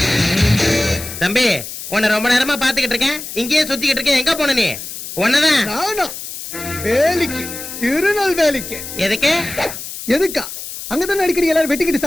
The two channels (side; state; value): left; noise; hiss, 9 dB below the sound